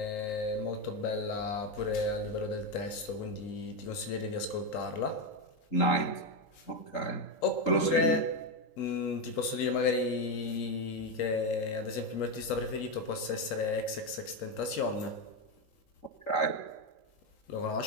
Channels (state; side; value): late; right; 3.8 ms